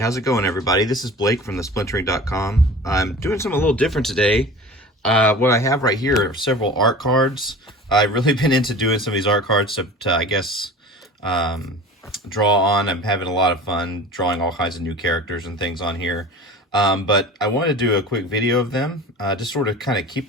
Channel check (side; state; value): both; normal; correlation 0.38